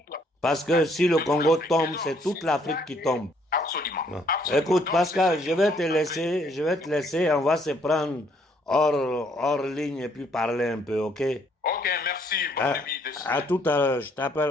Parce que si le Congo tombe, c'est toute l'Afrique qui tombe. Absolument. Écoute, Pascal, je vais te laisser, on va se prendre hors ligne et puis parler un peu, ok? Ok, merci. Bonne nuit. À tout à l'heure, je t'appelle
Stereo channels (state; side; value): normal; both; correlation 0.67